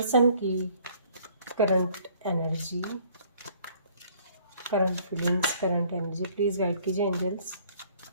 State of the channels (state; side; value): inverted; both; correlation -0.59